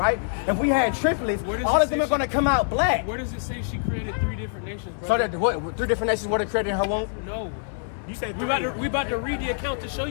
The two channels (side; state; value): right; silent; 62 dB below the other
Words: If we had triplets, all of them are going to come out black. Where does it say she created 3 different nations, brother? So that what, 3 different nations were created in her womb? No. You said we about to read the account to show